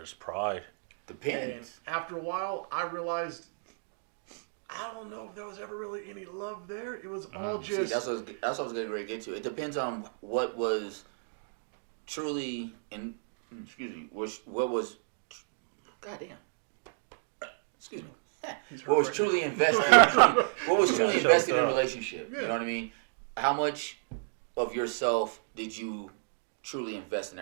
pride. Depends. And after a while, I realized I don't know if there was ever really any love there. It was all just. See, that's what I was going to get to. It depends on what was truly what was. Goddamn. Excuse me. What was truly invested? What was truly invested in a relationship? Yeah. You know what I mean? How much of yourself did you truly invest in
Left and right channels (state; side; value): silent; left; digital silence